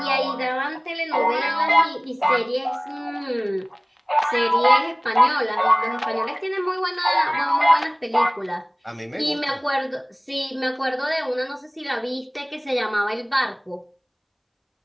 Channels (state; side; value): identical; both; correlation 1.00